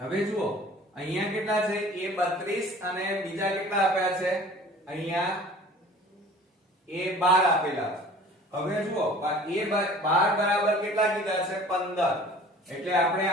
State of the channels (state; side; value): normal; both; correlation 0.46